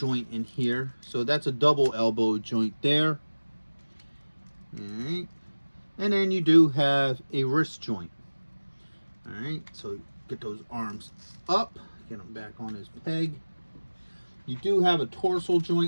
in here, so that's a double elbow joint there. All right, and then you do have a wrist joint. All right, so get those arms up, get them back on his peg. You do have a torso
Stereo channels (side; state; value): both; inverted; correlation -1.00